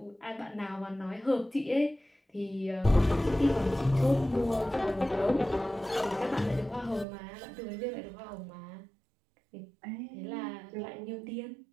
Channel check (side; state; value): left; drops out; at 7.1 s